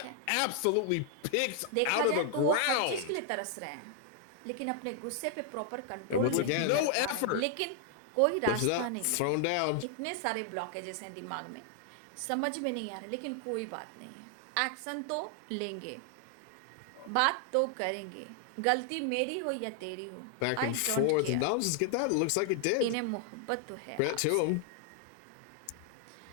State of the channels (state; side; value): different; both; correlation 0.00